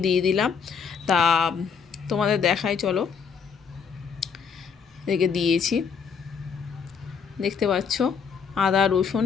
দিয়ে দিলাম। তা তোমাদের দেখাই, চলো। এদিকে দিয়েছি, দেখতে পাচ্ছ, আদা রসুন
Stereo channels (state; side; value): quieter; right; 6.3 dB